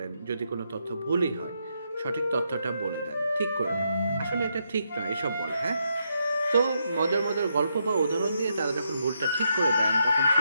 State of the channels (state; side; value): inverted; both; correlation -0.80